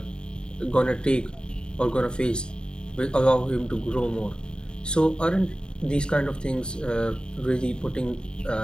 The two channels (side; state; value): right; late; 0.049 ms